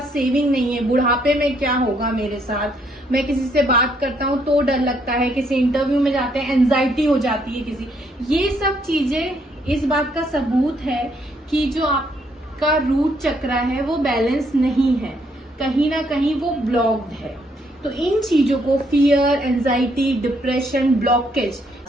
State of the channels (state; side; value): normal; both; correlation 0.71